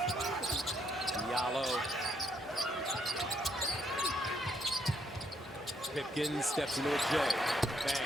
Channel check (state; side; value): normal; both; correlation 0.73